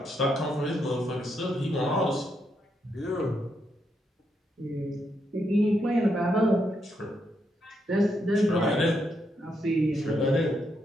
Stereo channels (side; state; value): both; normal; correlation 0.79